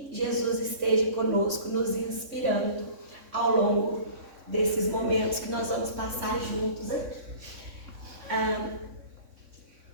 Jesus esteja conosco, nos inspirando ao longo desses momentos que nós vamos passar juntos aqui.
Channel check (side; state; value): left; late; 3.6 ms